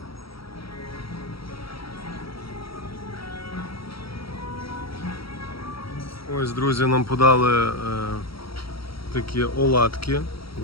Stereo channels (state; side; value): late; right; 0.75 ms